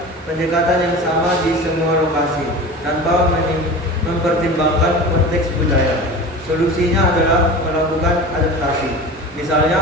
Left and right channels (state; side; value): normal; both; correlation 0.34